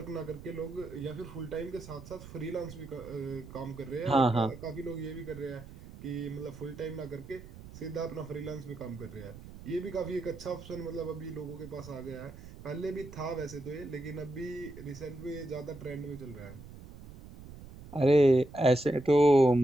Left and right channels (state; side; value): noise; right; rumble, 16 dB below the sound